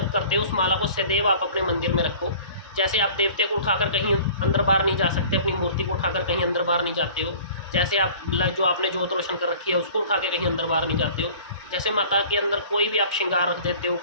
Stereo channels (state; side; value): inverted; both; correlation -0.46